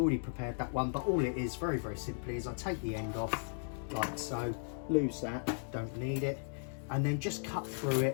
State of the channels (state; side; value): silent; right; digital silence